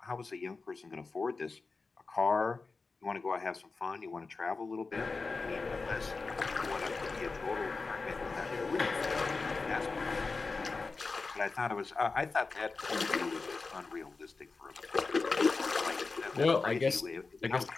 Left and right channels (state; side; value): quieter; right; 4.1 dB